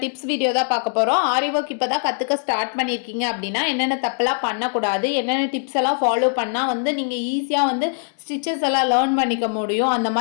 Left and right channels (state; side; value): silent; right; 59 dB below the other